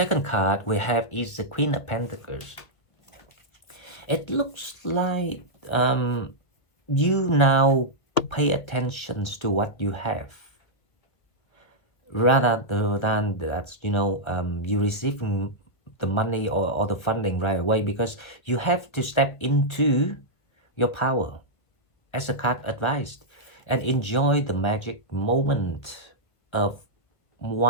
card we have is the Queen of Pentacles. It looks like you now pay attention to what you have rather than that you receiving the money or the funding right away, because you have to step into your power as a card advised and enjoy the magic moment of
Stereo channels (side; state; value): right; late; 1.6 ms